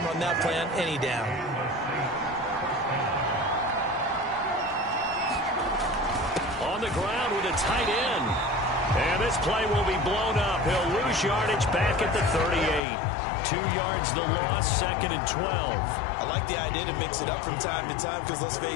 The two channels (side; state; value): right; drops out; at 12.8 s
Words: run that play on any down. On the ground with a tight end. And this play will be blown up. He'll lose yardage back at the 38. 2 yards the loss, 2nd and 12. I like the idea to mix it up from time to time because, let's